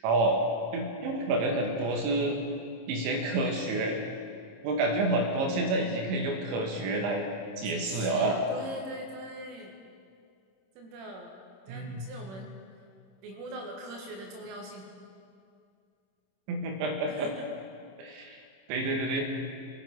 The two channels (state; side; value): late; left; 26 ms